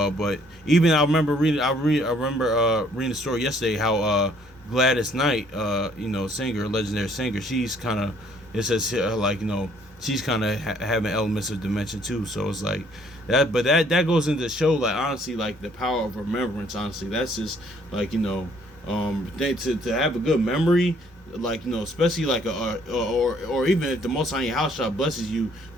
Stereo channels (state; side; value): normal; both; correlation 0.62